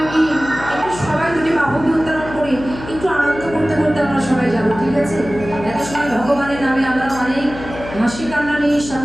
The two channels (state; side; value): noise; left; hum, 12 dB below the sound